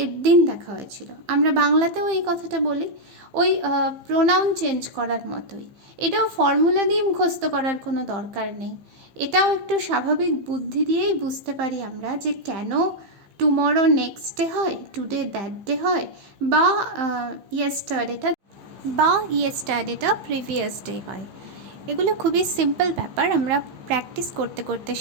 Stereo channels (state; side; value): late; left; 15 ms